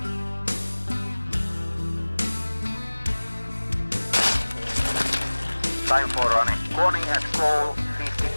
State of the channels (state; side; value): inverted; both; correlation -1.00